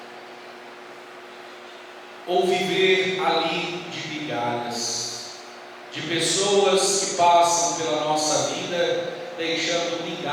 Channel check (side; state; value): both; identical; correlation 1.00